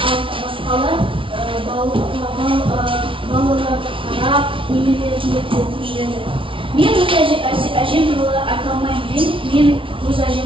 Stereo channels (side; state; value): left; late; 0.25 ms